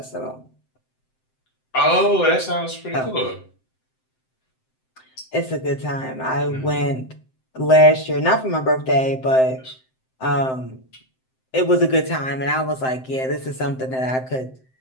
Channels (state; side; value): late; right; 7.7 ms